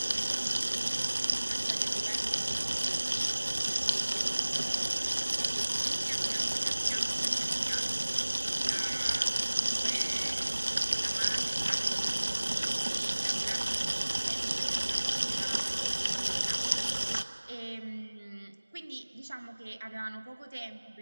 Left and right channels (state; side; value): inverted; both; correlation -1.00